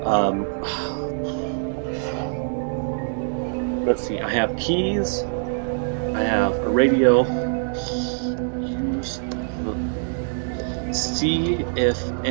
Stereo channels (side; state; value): left; silent; digital silence